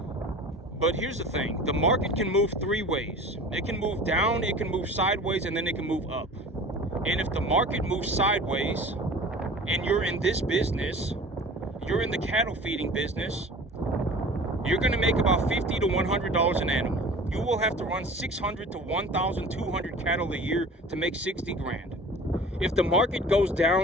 But here's the thing: the market can move three ways. It can move down, it can move sideways, and then it can move up. And if the market moves sideways, and you're in this business, you're in the cattle feeding business, you're going to make about $50 to $100 an animal. You will have to run 600 to 1,200 cattle a year to make 60 grand. If the market goes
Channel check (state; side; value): normal; both; correlation 0.41